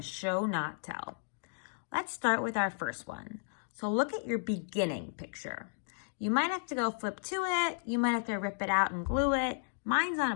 show, not tell. Let's start with our first one. So look at your beginning picture. You might have to go flip to it. You might have to rip it out and glue it. Mine's on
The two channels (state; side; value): silent; right; digital silence